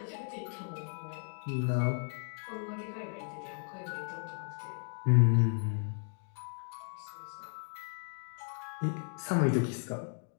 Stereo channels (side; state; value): right; silent; 54 dB below the other